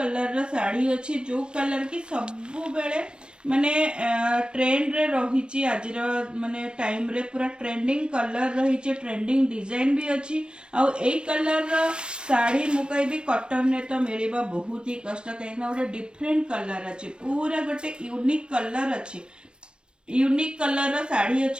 रो साड़ी अछि जो कलर की सबु बेले माने ट्रेंड रे रहिछि आजिर माने टाइम रे पूरा ट्रेंडिंग कलर रहिछि ट्रेंडिंग डिजाइन भी अछि आ ए कलर रो साड़ी मु कहबी कॉटन रे तो मिलिबा बहुत ही कष्ट काहेना ओटे डिफरेंट कलर अछि पूरा गोटे यूनिक कलर अछि यूनिक कलर रो साड़ी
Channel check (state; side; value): late; left; 0.055 ms